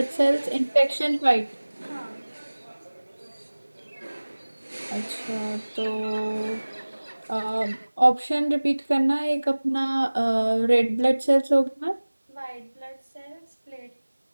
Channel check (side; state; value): both; inverted; correlation -1.00